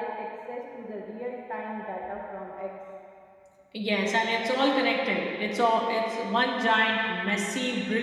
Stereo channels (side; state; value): both; identical; correlation 1.00